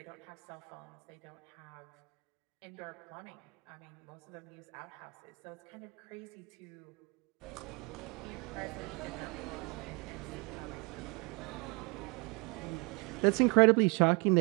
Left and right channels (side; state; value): left; quieter; 30.2 dB